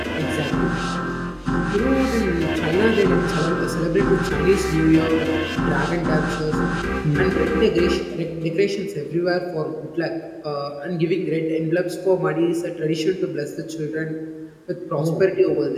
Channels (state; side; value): identical; both; correlation 1.00